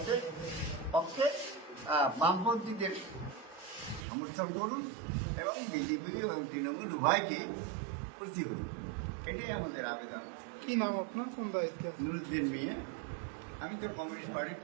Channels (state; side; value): drops out; left; at 4.0 s